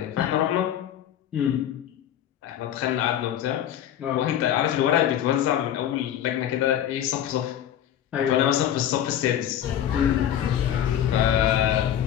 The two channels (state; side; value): quieter; right; 10.6 dB